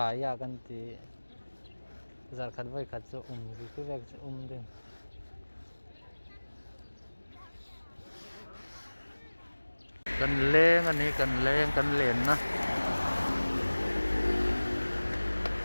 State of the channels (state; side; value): inverted; both; correlation -1.00